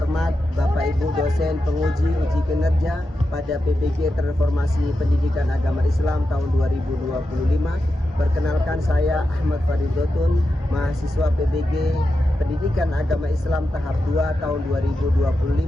Bapak Ibu dosen penguji uji kinerja pada PBG Transformasi Pendidikan Agama Islam tahun 2025. Perkenalkan, saya Ahmad Faridotun, mahasiswa PBG Pendidikan Agama Islam tahap 2 tahun 2025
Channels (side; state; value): both; normal; correlation 0.89